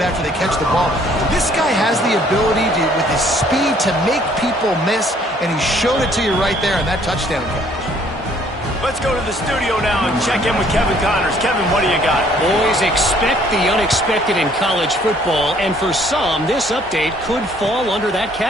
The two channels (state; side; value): normal; both; correlation 0.61